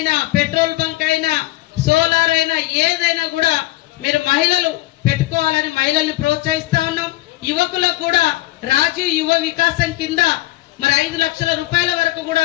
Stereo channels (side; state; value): right; quieter; 17.9 dB